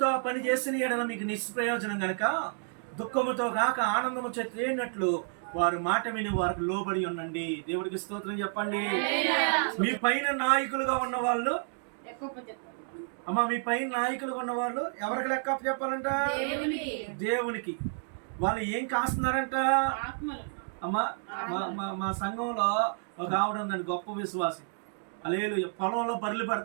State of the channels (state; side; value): silent; left; digital silence